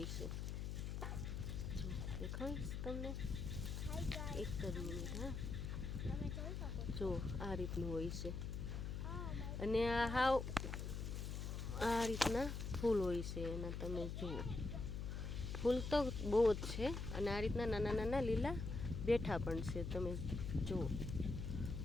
છે। જો દેખાડીશ તમને, એક જ મિનિટ। હા, જો આ રીતનું હોય છે, અને આ હાવ આ રીતના ફૂલ હોય છે એના, તમે જુઓ, ફૂલ તો બહુ જ છે, અને આ રીતના નાના નાના લીલા બેઠા પણ છે, તમે જુઓ,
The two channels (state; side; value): noise; left; hum, 4 dB below the sound